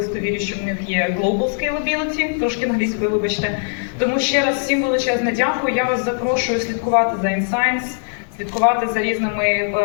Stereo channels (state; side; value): silent; right; 66 dB below the other